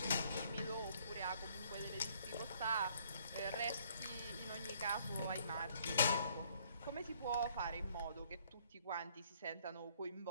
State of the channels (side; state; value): both; inverted; correlation -0.63